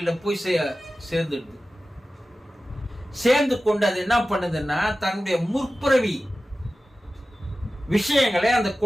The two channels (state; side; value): normal; both; correlation 0.95